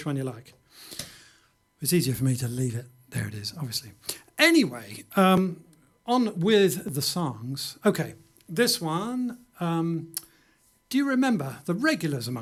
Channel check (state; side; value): identical; both; correlation 1.00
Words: one you like. It's easier for me to leave it. There it is, obviously. Anyway, on with the songs. Okay, this one. Do you remember? The regulars